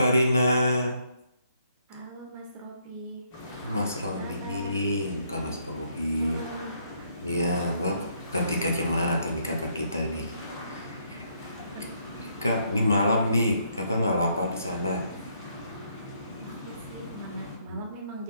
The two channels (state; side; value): inverted; both; correlation -0.71